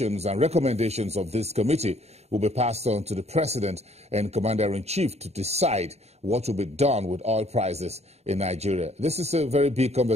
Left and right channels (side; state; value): left; late; 0.31 ms